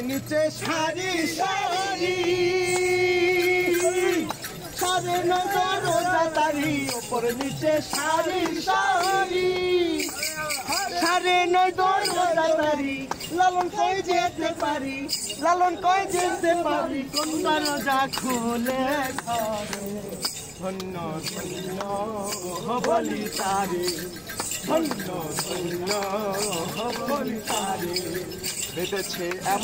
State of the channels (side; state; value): both; identical; correlation 1.00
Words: নিচে সারি সারি, সারে নজর রোজা তারি। ওপরে নিচে সারি সারি, সারে নজর রোজা তারি। লালন কই যেতে পারি, লালন কই যেতে পারি। কোনটা রোজা খুলে ঘরে। ধন্য ধন্য বলি তারে, ধন্য ধন্য বলি তারে। বেঁধেছে